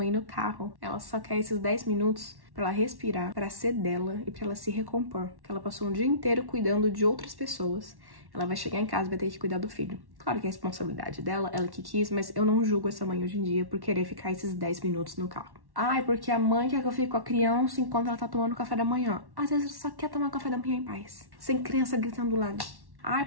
no carro, ela só quer esses 10 minutos pra ela respirar, pra ser dela e pra ela se recompor. Porque ela passou um dia inteiro cuidando de outras pessoas. Ela vai chegar em casa e vai ter que cuidar do filho. Claro que é a responsabilidade dela, ela que quis, mas eu não julgo essa mãe hoje em dia por querer ficar esses 10 minutos no carro. Ai, porque a mãe quer que eu fique com a criança enquanto ela tá tomando café da manhã. Às vezes ela só quer tomar café da manhã em paz, sem criança gritando do lado. Ai,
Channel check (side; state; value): left; late; 1.1 ms